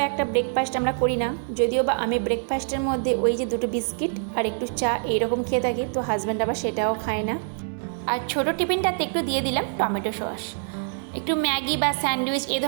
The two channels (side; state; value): left; silent; 62 dB below the other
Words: একটা ব্রেকফাস্ট আমরা করি না, যদিও বা আমি ব্রেকফাস্টের মধ্যে ওই যে দুটো বিস্কিট আর একটু চা এইরকম খেয়ে থাকি, তো হাজব্যান্ড আবার সেটাও খায় না। আর ছোটো টিফিনটাতে একটু দিয়ে দিলাম টমেটো সস। একটু ম্যাগি বা স্যান্ডউইচ এ